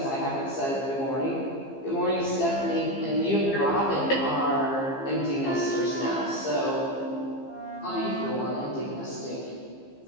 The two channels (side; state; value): right; late; 15 ms